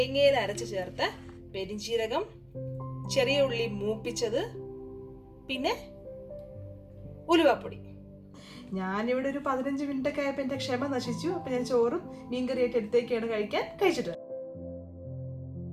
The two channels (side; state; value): both; identical; correlation 1.00